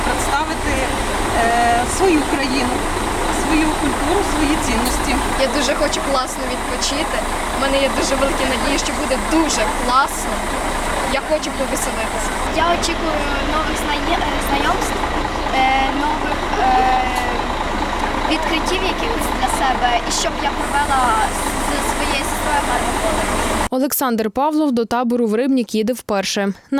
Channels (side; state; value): both; identical; correlation 1.00